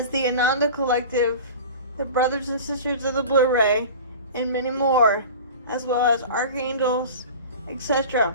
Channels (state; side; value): inverted; both; correlation -0.36